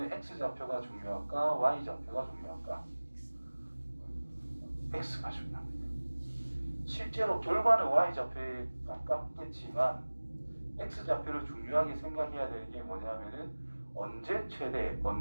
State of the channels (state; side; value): inverted; both; correlation -1.00